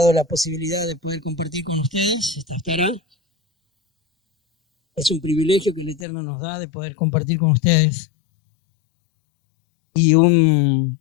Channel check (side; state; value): right; drops out; at 6.1 s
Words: la posibilidad de poder compartir con ustedes esta Haftará. Es un privilegio que el Eterno nos da de poder compartir con ustedes. Y un